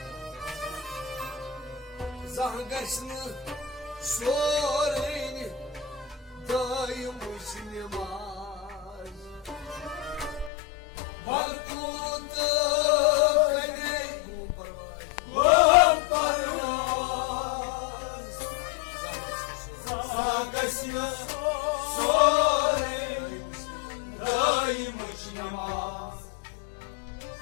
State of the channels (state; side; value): drops out; right; at 10.5 s